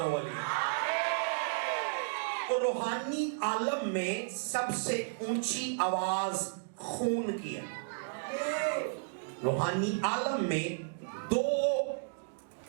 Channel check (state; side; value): silent; left; digital silence